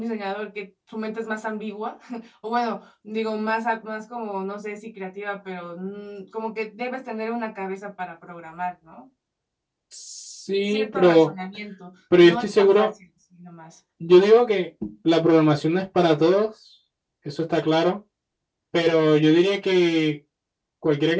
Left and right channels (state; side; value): identical; both; correlation 1.00